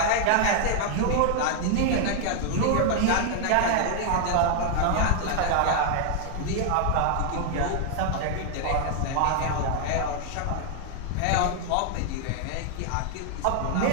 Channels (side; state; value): both; different; correlation 0.00